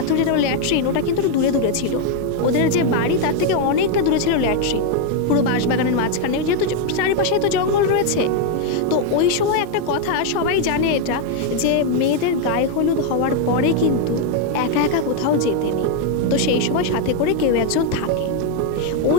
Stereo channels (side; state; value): both; different; correlation 0.01